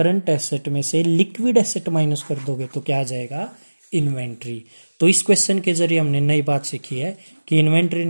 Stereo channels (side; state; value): both; inverted; correlation -1.00